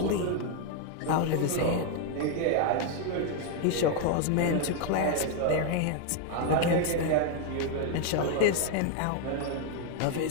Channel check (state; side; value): different; both; correlation 0.01